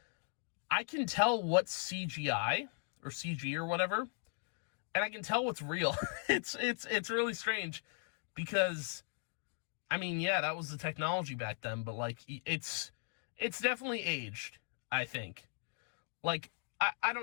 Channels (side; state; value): right; silent; 52 dB below the other